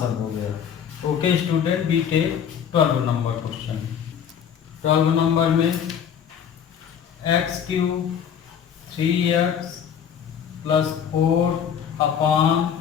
हो गया। Okay student, B tech 12 number question. 12 number में x³ 3x +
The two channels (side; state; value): right; quieter; 8.2 dB